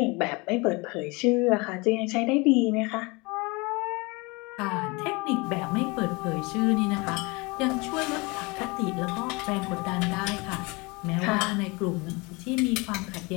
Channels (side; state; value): right; quieter; 26.7 dB